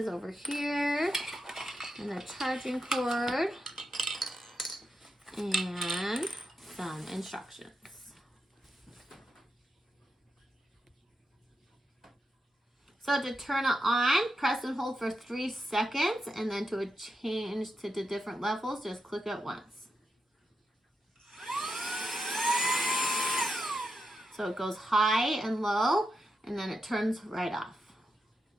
over here. And a charging cord. And some instructions. So to turn it on, press and hold for 3 seconds, and then to change to the different levels, just click it once. So it goes high and low, and then it turns right off.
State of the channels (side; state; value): both; normal; correlation 0.86